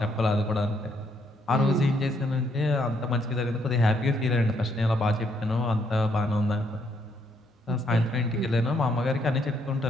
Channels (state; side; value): normal; both; correlation 0.72